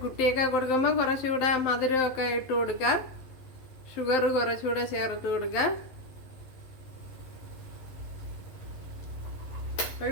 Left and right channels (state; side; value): late; right; 11 ms